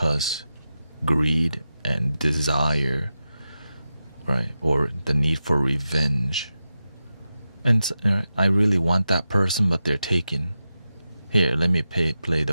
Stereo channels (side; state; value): both; inverted; correlation -0.90